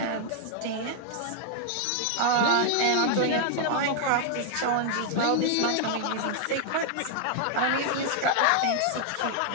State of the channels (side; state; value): both; different; correlation 0.00